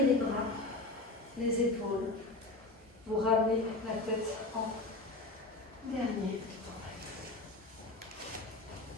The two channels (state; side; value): quieter; right; 3.0 dB